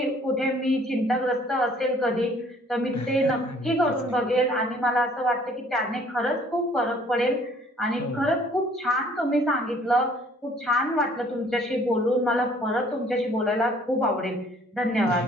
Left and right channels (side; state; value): both; normal; correlation 0.58